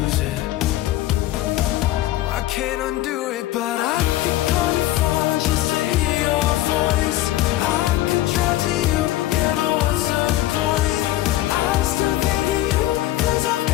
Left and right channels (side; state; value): right; quieter; 15.2 dB